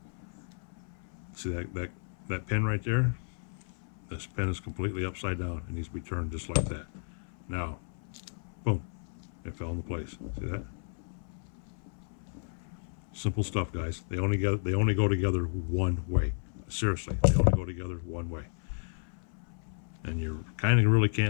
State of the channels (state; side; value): silent; right; 56 dB below the other